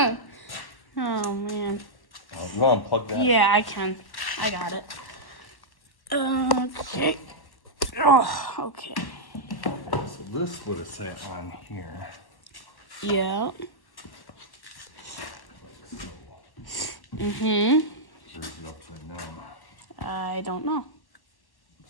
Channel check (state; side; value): late; right; 1.1 ms